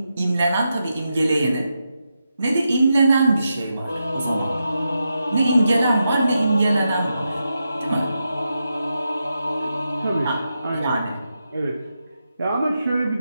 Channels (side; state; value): both; inverted; correlation -0.87